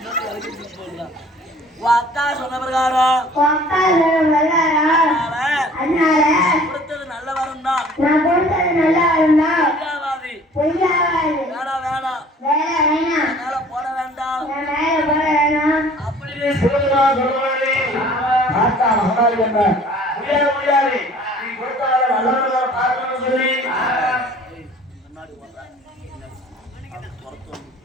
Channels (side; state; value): both; normal; correlation 0.51